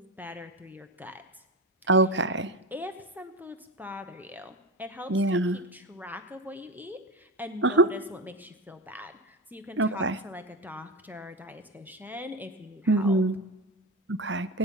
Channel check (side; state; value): both; normal; correlation 0.22